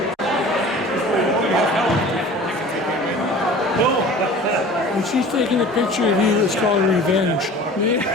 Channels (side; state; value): both; normal; correlation 0.42